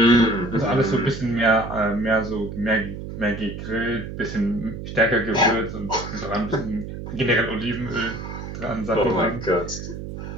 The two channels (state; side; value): noise; right; hum, 9 dB below the sound